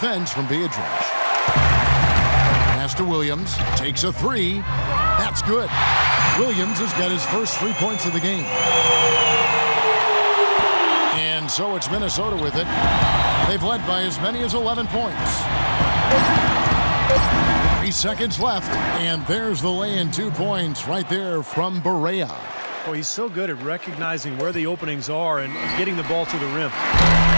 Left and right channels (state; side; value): inverted; both; correlation -1.00